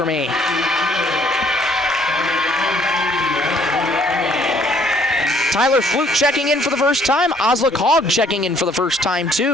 me." Tyler Flute checking in for the first time. Oslick Hogg checking in for the first time,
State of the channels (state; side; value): normal; both; correlation 0.63